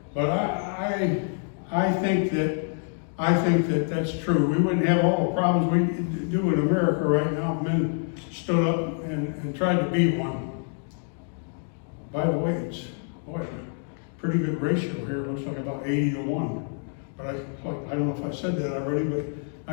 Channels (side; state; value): right; silent; 55 dB below the other